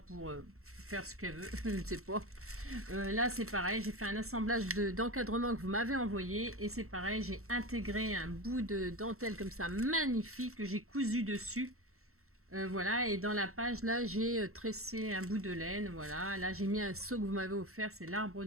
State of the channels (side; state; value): left; late; 0.63 ms